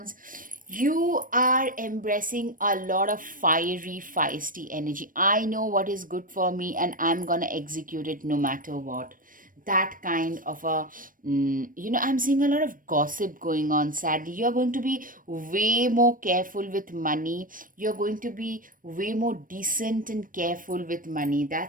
You are embracing a lot of fiery, feisty energy. I know what is good for me, and I'm gonna execute it no matter what. That kind of a I'm seeing a lot of gossip going on. Sadly, you're going to be way more careful with money. You're going to be way more decent and careful with money.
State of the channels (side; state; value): left; late; 0.40 ms